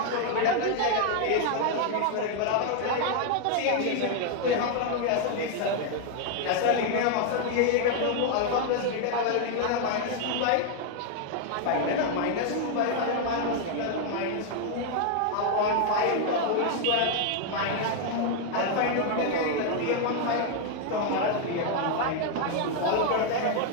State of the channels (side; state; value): both; different; correlation 0.00